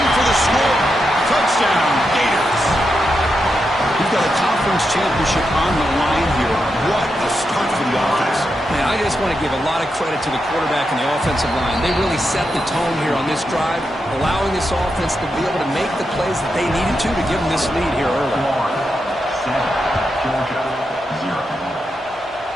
for the score. Touchdown, Gators. We've got a conference championship on the line here. What a start for the offense. Man, I just want to give a lot of credit to the quarterback and the offensive line. They really set the tone here on this drive, allowing this offense to be able to make the plays that they needed to give them this lead here early. Georgia, 0.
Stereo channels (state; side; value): normal; both; correlation 0.86